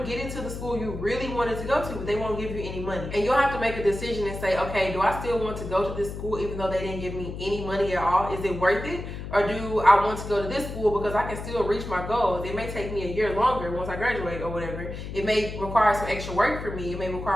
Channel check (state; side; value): noise; left; hum, 8 dB below the sound